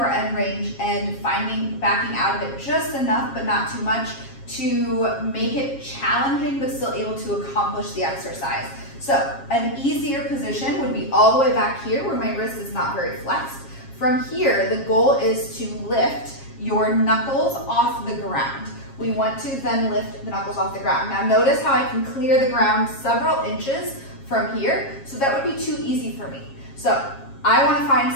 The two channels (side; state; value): right; late; 7.3 ms